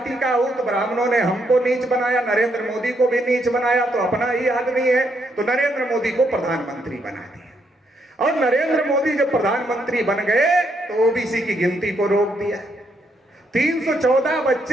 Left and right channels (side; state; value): both; normal; correlation 0.76